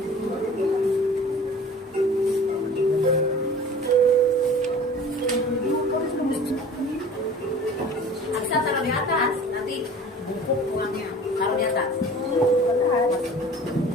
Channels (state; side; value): normal; both; correlation 0.43